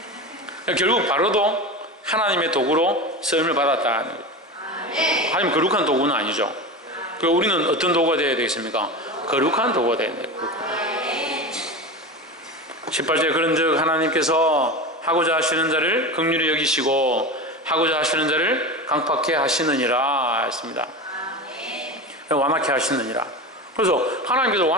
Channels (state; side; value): normal; both; correlation 0.26